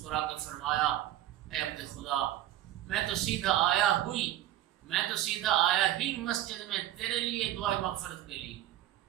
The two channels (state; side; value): quieter; left; 13.4 dB